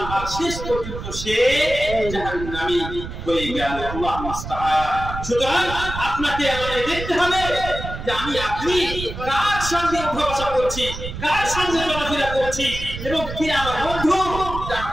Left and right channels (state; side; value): noise; right; rumble, 8 dB below the sound